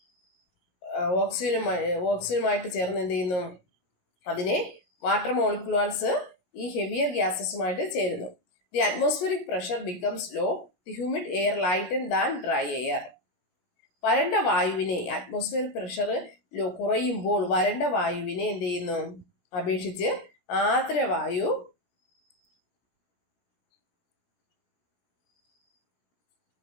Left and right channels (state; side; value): late; right; 17 ms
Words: ഓക്സിജനുമായിട്ട് ചേർന്ന് എന്ത് ചെയ്യുന്നു, അതിനെ വാട്ടർ മോളിക്യൂൾസ് ഈ ഹെവിയർ ഗ്യാസസുമായിട്ട് ചേരുന്നു. The atmospheric pressure becomes low, the humid air lighten than dry air. വരണ്ട വായുവിനെ, അറ്റ്മോസ്ഫിയർ പ്രഷർ കുറയുമ്പോൾ വരണ്ട വായുവിനെ എന്ത് ചെയ്യുന്നു, അപേക്ഷിച്ച് ആർദ്രവായു